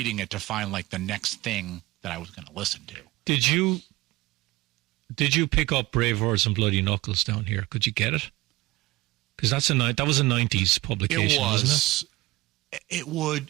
it to find like the next thing that I was going to listen to. Did you pick up Brave Words and Bloody Knuckles down here? Could you get it? Because that was a 90s publication, wasn't it? It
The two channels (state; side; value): quieter; left; 19.8 dB